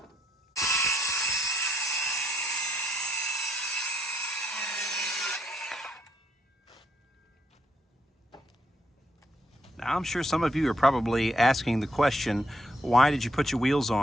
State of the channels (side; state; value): both; normal; correlation 0.75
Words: Now, I'm sure some of you are probably asking the question, why did you put your wheels